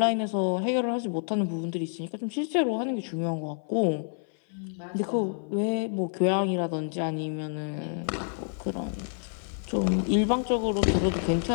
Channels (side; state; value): right; silent; 59 dB below the other